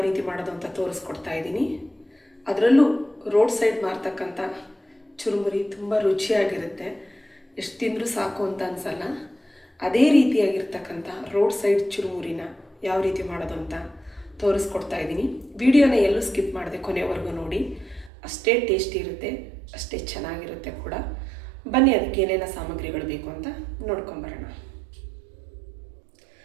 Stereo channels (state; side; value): drops out; left; at 18.1 s